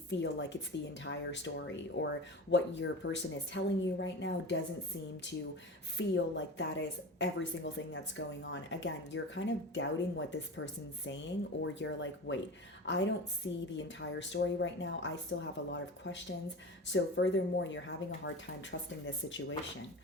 like it's the entire story, or what your person is telling you right now doesn't seem to feel like that is every single thing that's going on. Again, you're kind of doubting what this person's saying, or you're like, wait, I don't see the entire story right now. I still have a lot of questions. So furthermore, you're having a hard time trusting this situation.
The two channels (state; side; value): normal; both; correlation 0.30